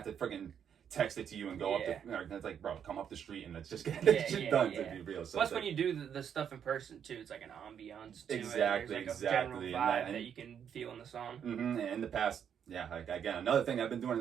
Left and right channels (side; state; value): left; quieter; 8.3 dB